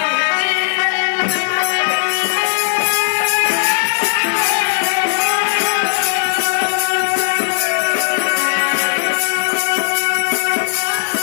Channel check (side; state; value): right; silent; digital silence